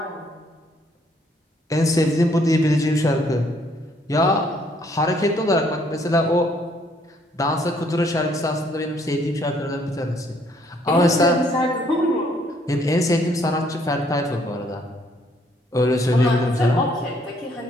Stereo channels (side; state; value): both; normal; correlation 0.66